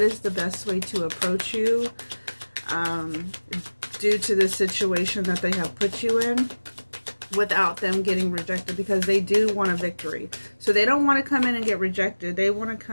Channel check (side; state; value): both; inverted; correlation -1.00